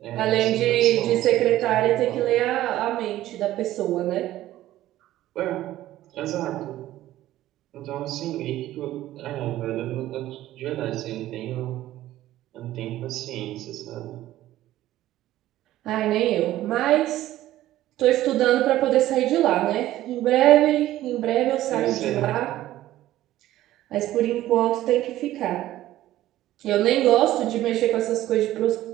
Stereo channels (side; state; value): left; quieter; 14.5 dB